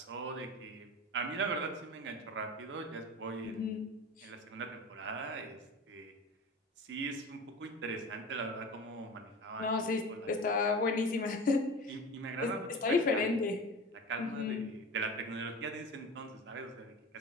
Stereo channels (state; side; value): normal; both; correlation 0.33